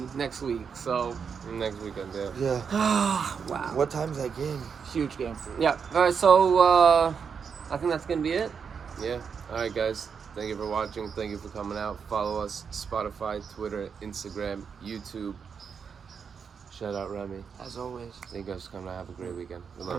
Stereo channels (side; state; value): left; quieter; 6.4 dB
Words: next week. So. Next weekend, yeah. Wow. What time's that game? Huge game. Yeah. All right. So I think that's gonna be it. Yeah. All right, guys. Thank you for watching. Thank you for coming out. Follow us Spotify, Twitter, Instagram, YouTube. Shout out Remy. As always. Thank you guys for coming out. Have a great weekend. We